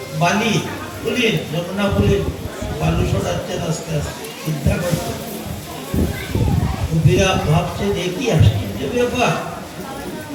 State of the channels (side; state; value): both; identical; correlation 1.00